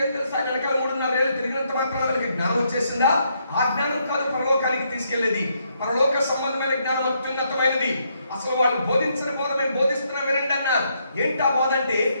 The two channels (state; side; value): inverted; both; correlation -0.75